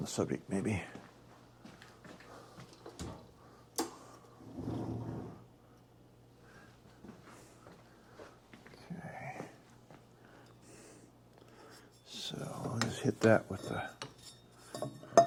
subject, maybe. Okay. So I'll just hit that with the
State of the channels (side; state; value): both; identical; correlation 1.00